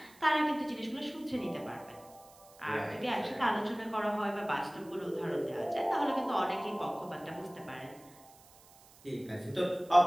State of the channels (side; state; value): right; noise; hiss, 25 dB below the sound